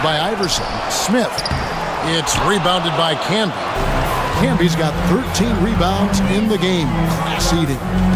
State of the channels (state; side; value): identical; both; correlation 1.00